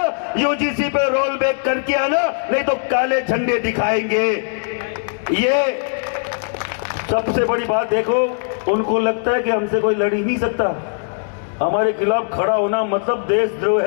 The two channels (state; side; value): silent; right; digital silence